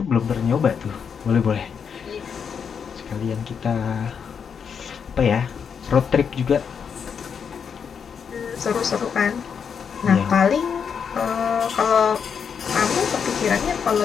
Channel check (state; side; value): quieter; right; 6.8 dB